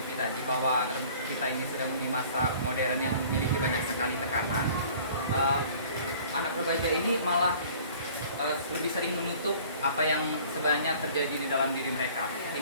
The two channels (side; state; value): both; inverted; correlation -0.50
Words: tadi bahwa kita ini sedang di masa modern yang memiliki banyak sekali tekanan, anak remaja ini malah lebih sering menutup apa yang sebenarnya terjadi di dalam diri mereka,